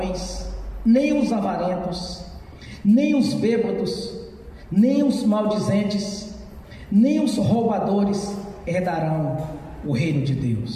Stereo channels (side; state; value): both; identical; correlation 1.00